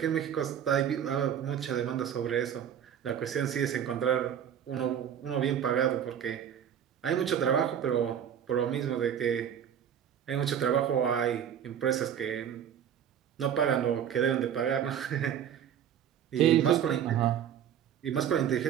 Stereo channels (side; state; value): left; quieter; 9.1 dB